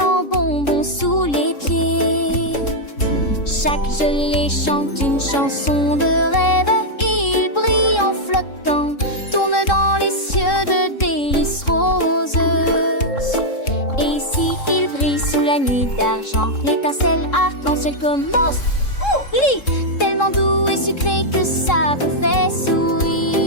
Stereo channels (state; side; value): late; right; 3.7 ms